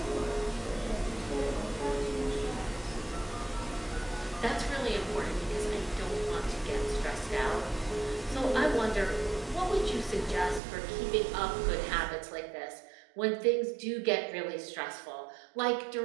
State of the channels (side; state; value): left; drops out; at 10.6 s